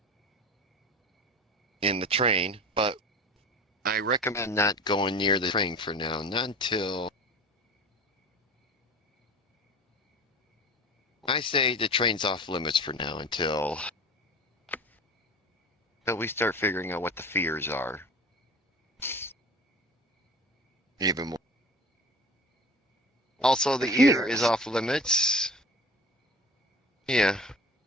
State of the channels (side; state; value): both; normal; correlation 0.38